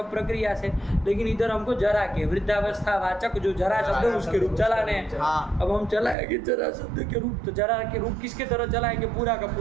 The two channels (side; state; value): left; drops out; at 6.2 s